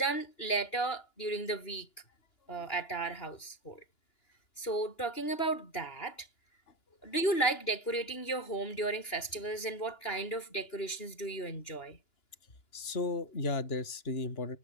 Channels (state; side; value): late; right; 2.9 ms